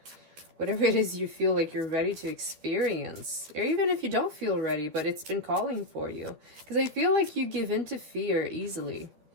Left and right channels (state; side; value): late; left; 12 ms